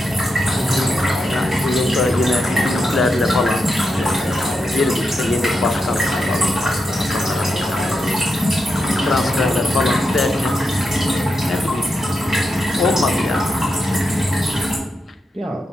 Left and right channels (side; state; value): both; normal; correlation 0.85